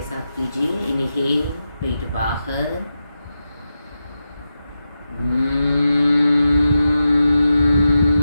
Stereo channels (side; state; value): both; inverted; correlation -0.89